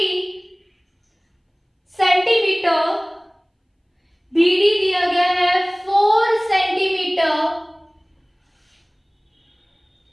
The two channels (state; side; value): identical; both; correlation 1.00